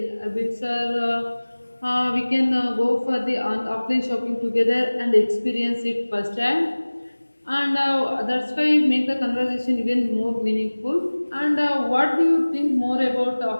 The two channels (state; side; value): inverted; both; correlation -1.00